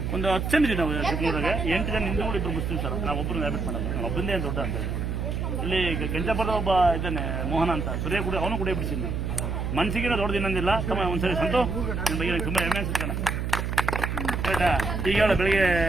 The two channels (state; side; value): noise; right; hum, 2 dB below the sound